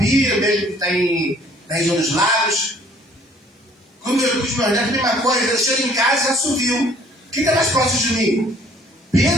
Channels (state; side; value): normal; both; correlation 0.57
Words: mesmo que está na região dos lagos, com os meus netos, a mesma coisa, eu chego em casa e assovio. Quem está mais próximo de mim?